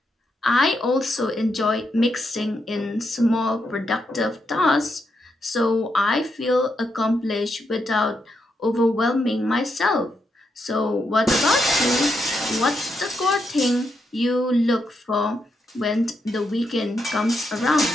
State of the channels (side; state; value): both; normal; correlation 0.82